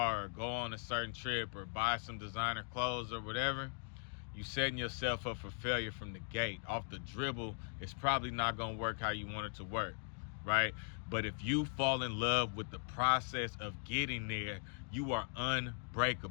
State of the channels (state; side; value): silent; right; 51 dB below the other